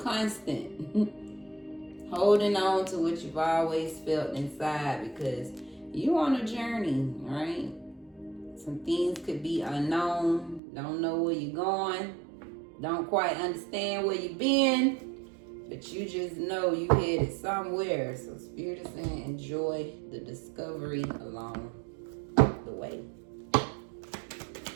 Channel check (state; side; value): drops out; left; at 10.6 s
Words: Holding on to what you've always felt inside, because you on a journey, right? Some things could be unknown. Don't know where you're going. Don't quite understand where you've been, but you just know you headed somewhere. So Spirit is saying enjoy the discovery along the way.